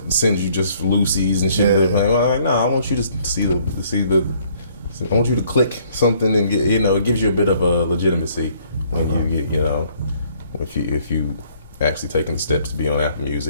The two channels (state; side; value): inverted; both; correlation -0.63